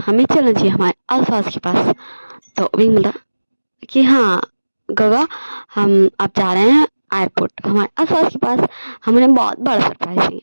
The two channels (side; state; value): both; inverted; correlation -1.00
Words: हमें चलना चाहिए हमारे अल्फाज के पास। तो विंग बोलता कि हाँ गगा हम अब जा रहे हैं एयरपोर्ट हमारे अल्फाज के पास, हमने बहुत बड़ा सरप्राइज है।